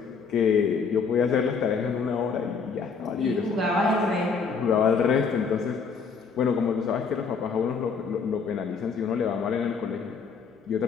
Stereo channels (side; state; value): right; quieter; 5.4 dB